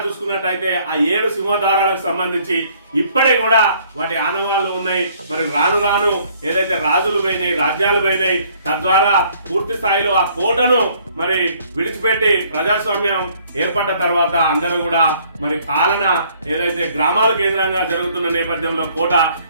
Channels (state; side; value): inverted; both; correlation -0.61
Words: చూసుకున్నట్టయితే ఆ 7 సింహద్వారాలకు సంబంధించి ఇప్పటికి కూడా వాటి ఆనవాళ్లు ఉన్నాయి. మరి రాను రాను ఏదైతే రాజులు పోయినాయి, రాజ్యాలు పోయినాయి, తద్వారా పూర్తి స్థాయిలో ఆ కోటను మరి విడిచిపెట్టి ప్రజాస్వామ్యం ఏర్పడ్డ తర్వాత అందరూ కూడా మరి పాలన ఏదైతే గ్రామాల కేంద్రంగా జరుగుతున్న నేపథ్యంలో కోట